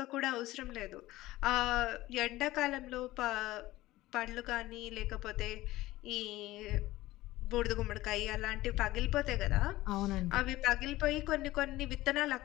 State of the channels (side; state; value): right; quieter; 17.3 dB